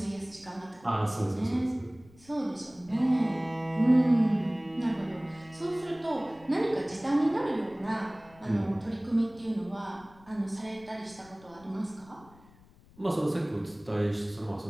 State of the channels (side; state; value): left; noise; rumble, 26 dB below the sound